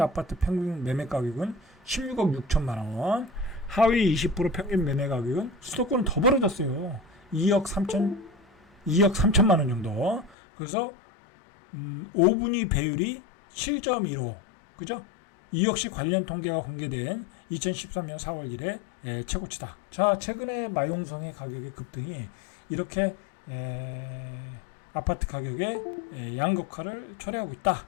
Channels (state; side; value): drops out; right; at 10.4 s